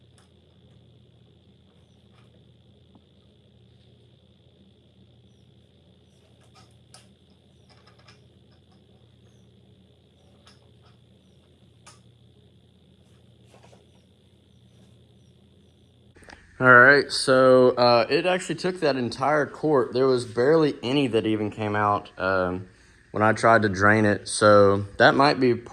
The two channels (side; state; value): both; identical; correlation 1.00